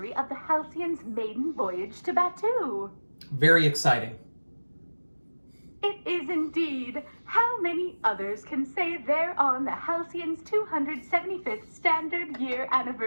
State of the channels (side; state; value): both; inverted; correlation -1.00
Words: of the Halcyon's maiden voyage to Batu? Very exciting. It is indeed. How many others can say they're on the Halcyon's 275th standard year